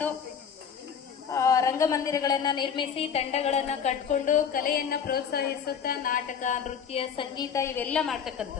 ರಂಗಮಂದಿರಗಳನ್ನ ನಿರ್ಮಿಸಿ ತಂಡಗಳನ್ನ ಕಟ್ಕೊಂಡು ಕಲೆಯನ್ನ ಪ್ರೋತ್ಸಾಹಿಸುತ್ತಾ ನಾಟಕ, ನೃತ್ಯ, ಸಂಗೀತ ಇವೆಲ್ಲ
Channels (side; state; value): right; quieter; 7.3 dB